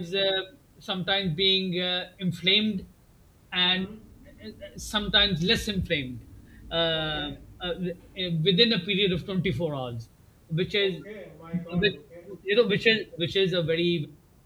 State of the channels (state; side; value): identical; both; correlation 1.00